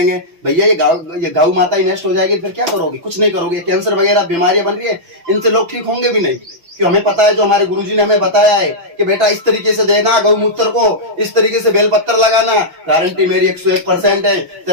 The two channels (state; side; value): late; left; 6.3 ms